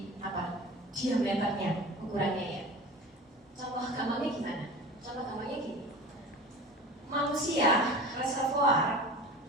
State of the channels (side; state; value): both; normal; correlation 0.36